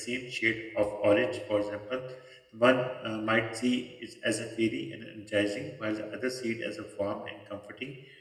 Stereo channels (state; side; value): identical; both; correlation 1.00